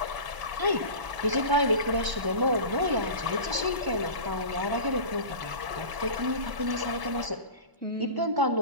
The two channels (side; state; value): left; late; 1.0 ms